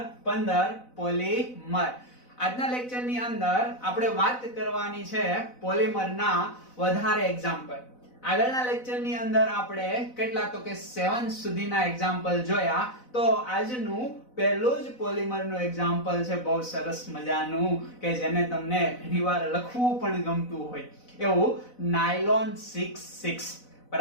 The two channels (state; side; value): late; right; 4.0 ms